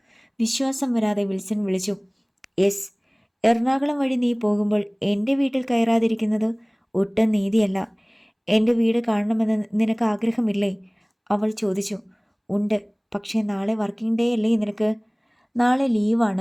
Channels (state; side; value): identical; both; correlation 1.00